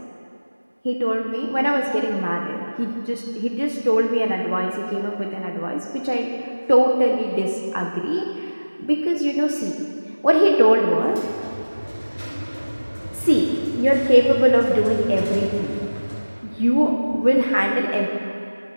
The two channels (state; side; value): inverted; both; correlation -1.00